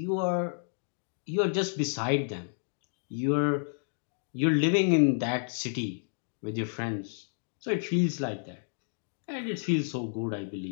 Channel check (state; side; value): silent; right; digital silence